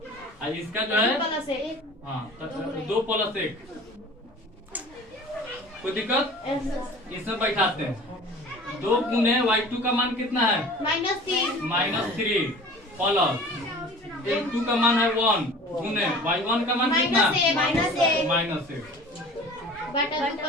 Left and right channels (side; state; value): both; normal; correlation 0.43